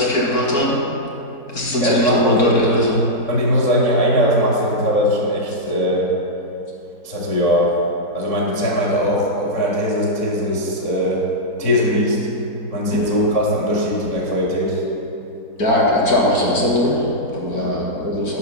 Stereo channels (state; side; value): late; right; 4.4 ms